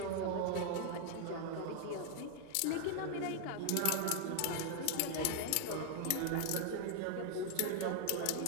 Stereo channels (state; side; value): different; both; correlation 0.00